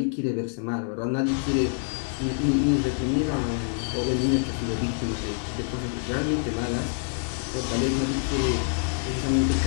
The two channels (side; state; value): right; silent; digital silence